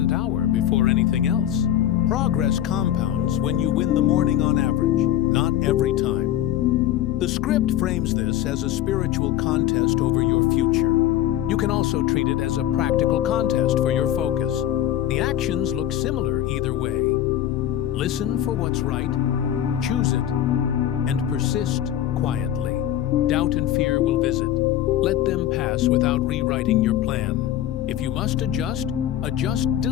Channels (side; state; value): right; quieter; 11.9 dB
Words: hour before anything else. Progress compounds when you win the morning on average, not every time. The script frames this as a spiritual contest over your future. You can also treat it as a practical contest for your focus. The actions look similar either way. Listen for what's right, choose it, and persist quietly. Doubt and fear will visit. Let them pass without rewriting your plan. If you must adjust, adjust